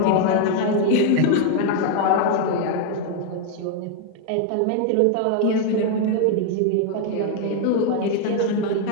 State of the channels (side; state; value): both; different; correlation 0.00